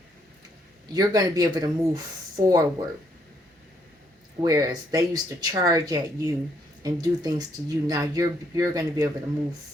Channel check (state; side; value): normal; both; correlation 0.71